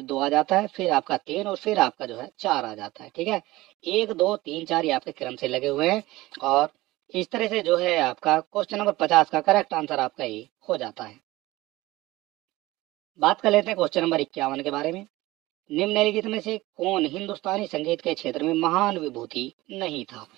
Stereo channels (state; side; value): quieter; left; 18.8 dB